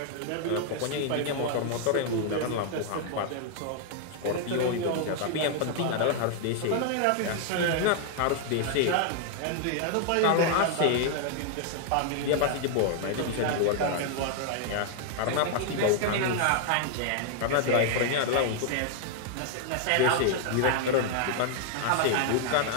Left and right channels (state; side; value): different; both; correlation 0.00